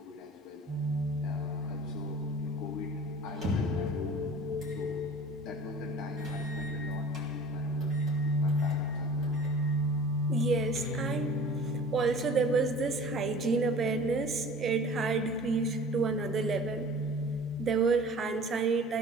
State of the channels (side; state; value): both; normal; correlation 0.44